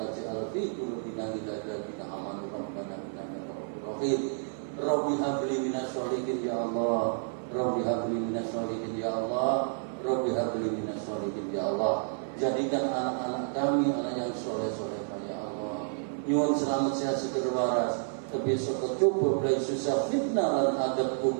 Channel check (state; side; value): silent; left; 58 dB below the other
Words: fi qulubina ghillan amanu rabbana innaka ra'ufur rahim. Rabbi habli minas sholihin ya Allah. Rabbi habli minas sholihin ya Allah. Rabbi habli minas sholihin ya Allah. Jadikan anak-anak kami anak yang soleh-soleh ya Allah. Nyuwun selamat sehat seger waras. Besok kecukup dari susah fitnah dan adab